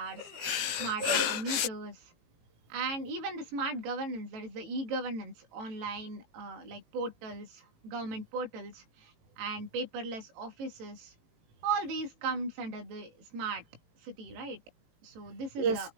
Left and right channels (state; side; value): late; left; 18 ms